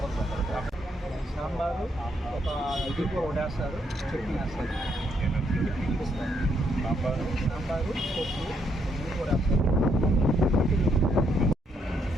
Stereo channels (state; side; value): normal; both; correlation 0.74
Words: సాంబారు ఒక ఇది కూడా వడేస్తారు చట్నీ వేస్తారు సాంబారు పప్పు అన్నీ కూడా వేస్తారు